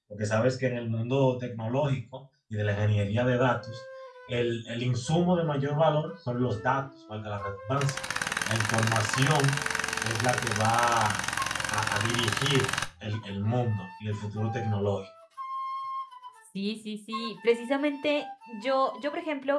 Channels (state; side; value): identical; both; correlation 1.00